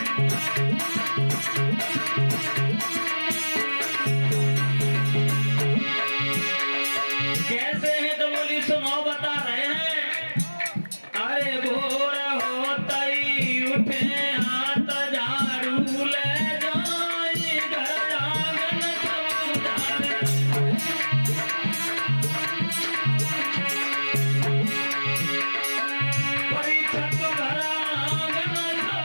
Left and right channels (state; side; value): inverted; both; correlation -1.00